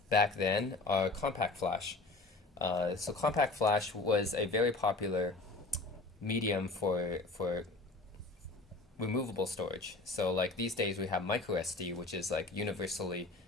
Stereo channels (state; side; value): quieter; right; 3.4 dB